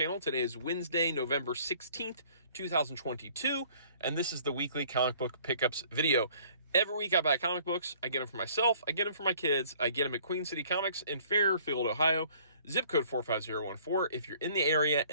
Today is Wednesday, November 16th, 2022, and this is the weekly comic book pickups video. Every week I buy comic books. I get them for myself. I get them for my kids. I get them at Queen City Comics in Fairfield, Ohio. Zip code 45014. If you're in the area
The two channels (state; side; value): inverted; both; correlation -0.56